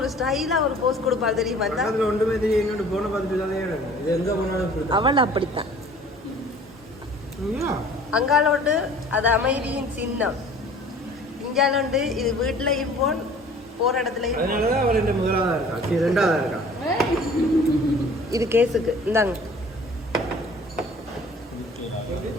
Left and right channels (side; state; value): both; normal; correlation 0.49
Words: ஸ்டைலா ஒரு போஸ்ட் கொடுப்பாரு தெரியுமா அதுல ஒன்றுமே தெரியும் என்னோட போன பார்த்துட்டு தானே இது எங்க போனாலும் அவள் அப்படித்தான் ஐயா அங்காலோட்டு அது அமைதியின் சின்னம் இங்காலோண்டு இது வீட்டுலயும் போன் போற இடத்துலயும் போன். அதனாலதான் அவள் என்ற முதலாவதா இருக்கா ரெண்டாவதா இருக்கா இது கேஸுக்கு இந்தாங்க